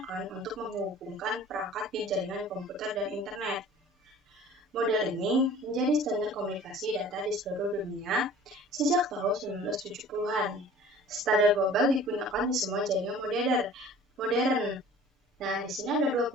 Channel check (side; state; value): both; normal; correlation 0.46